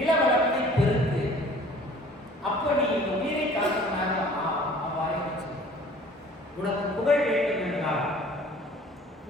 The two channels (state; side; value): normal; both; correlation 0.50